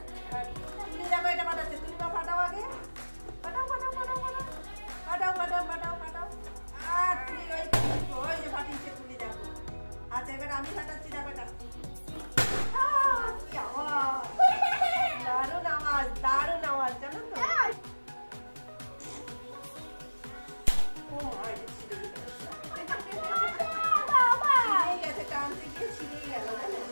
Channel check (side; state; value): both; inverted; correlation -1.00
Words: তুমি দেখো এটা ফাটাচ্ছে, তুমি তো ফাটাও আগে। ফাটাও ফাটাও ফাটাও ফাটাও ফাটাও ফাটাও ফাটাও ফাটাও। আর তুলি ওই যে ফাটিয়েছে তুলি দেখো। আচ্ছা এবার আমি ফাটাচ্ছি দেখো এটা। কি আওয়াজ, দারুণ আওয়াজ, দারুণ আওয়াজ জানো তো। ও মাই গেছে, টানতে গিয়ে ছিঁড়েই গেল জানো,